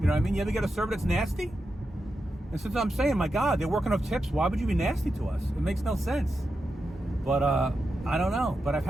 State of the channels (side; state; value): both; normal; correlation 0.88